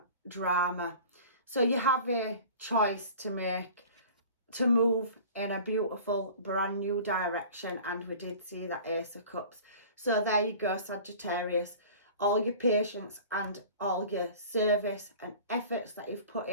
drama. So you have a choice to make, to move in a beautiful brand new direction. And we did see that Ace of Cups. So there you go, Sagittarius. All your patience and all your service and efforts that you've put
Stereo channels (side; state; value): both; inverted; correlation -0.42